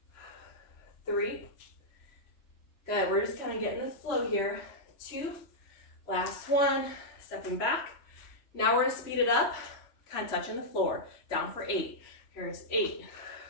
3, good, we're just kind of getting the flow here. 2, last one, stepping back. Now we're gonna speed it up, kind of touching the floor. Down for 8. Here's 8,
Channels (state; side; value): late; right; 3.1 ms